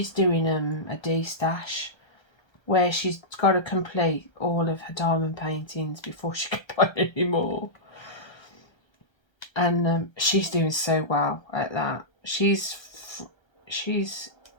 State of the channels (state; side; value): late; right; 1.3 ms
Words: doing a D-stash where she's got to complete all of her diamond paintings before she can paint anymore. And she's doing so well at that. She's